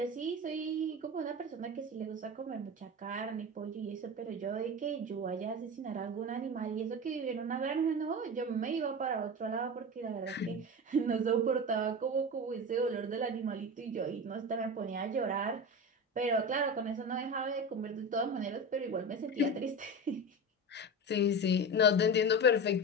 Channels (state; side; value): normal; both; correlation 0.25